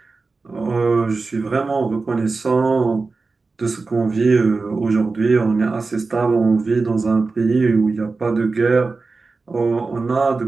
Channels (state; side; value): quieter; left; 4.0 dB